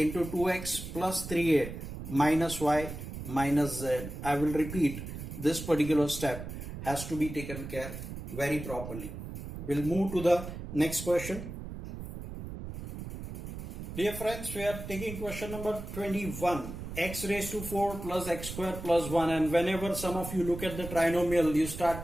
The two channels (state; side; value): noise; right; rumble, 9 dB below the sound